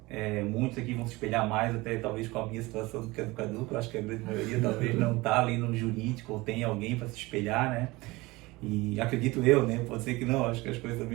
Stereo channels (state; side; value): quieter; left; 21.7 dB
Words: muitos aqui vão se espelhar mais até talvez com a minha situação do que a do Cadu, que eu acho que a grande maioria talvez não está ali no jurídico ou tem alguém para se espelhar, E acredito eu, pode ser que não, acho que as coisas